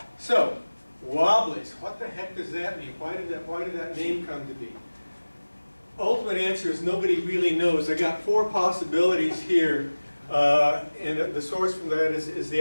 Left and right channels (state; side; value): inverted; both; correlation -1.00